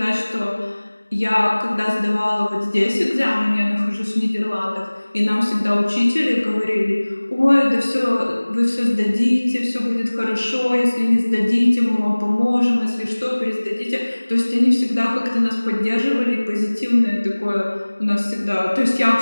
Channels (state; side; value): inverted; both; correlation -1.00